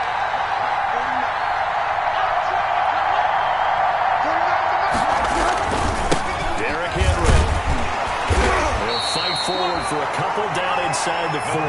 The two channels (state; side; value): identical; both; correlation 1.00